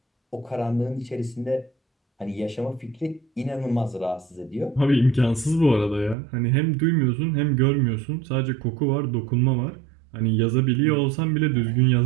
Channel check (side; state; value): left; drops out; at 6.2 s